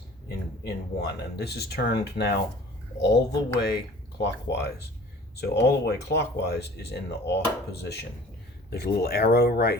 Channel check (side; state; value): both; normal; correlation 0.46